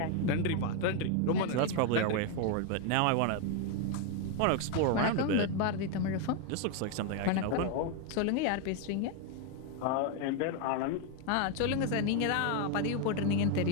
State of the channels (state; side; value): different; both; correlation 0.01